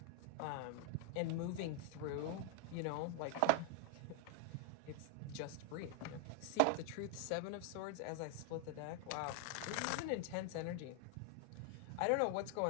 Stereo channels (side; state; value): both; different; correlation 0.00